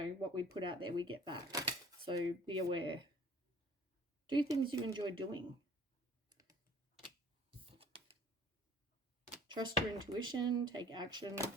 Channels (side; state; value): both; normal; correlation 0.51